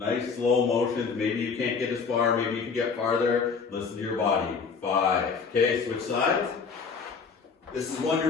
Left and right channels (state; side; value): quieter; right; 5.4 dB